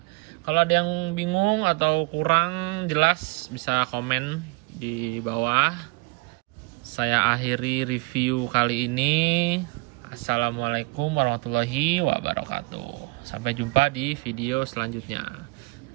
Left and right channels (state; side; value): quieter; left; 26.7 dB